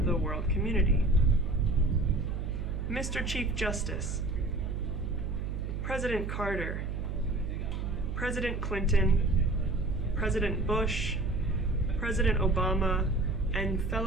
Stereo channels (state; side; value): noise; right; hum, 4 dB below the sound